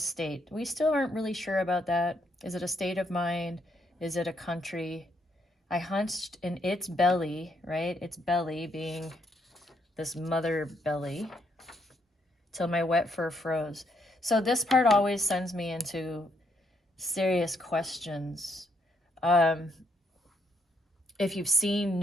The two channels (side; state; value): both; normal; correlation 0.75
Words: We still aren't really sure about that. Is it a state of mind? Is it a country? I hunched in its belly, right? Its belly being this mother belly, till my wet fur froze. So this part always sends me into serious questions. If you've seen